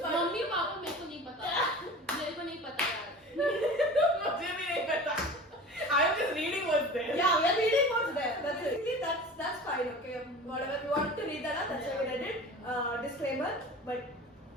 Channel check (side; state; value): both; normal; correlation 0.37